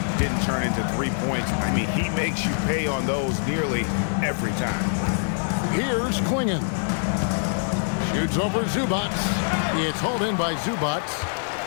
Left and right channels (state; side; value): silent; right; 62 dB below the other